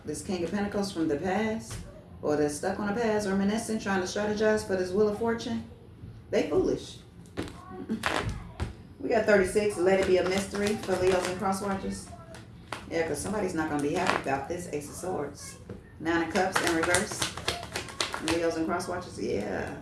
This King of Pentacles from the past. Or they're stuck on the past, reminiscing, trying to strategize for this Wheel of Fortune. They foolish. We got 36. Let it be a mystery for Leos and cross watchers. Yeah, because somebody's not going to be happy about this Ace of Swords. Nine of Cups in reverse. Leos and cross watchers. Yeah.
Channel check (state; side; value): identical; both; correlation 1.00